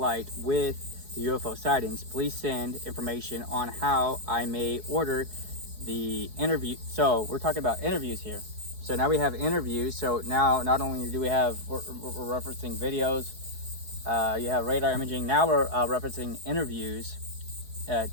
with the UFO sightings. Please send information on how I may order the interview. So we're talking about interviews here. So now we have interviews. So now not only do we have, we're referencing videos, you have radar imaging. Now we're referencing interviews,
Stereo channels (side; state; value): left; late; 4.7 ms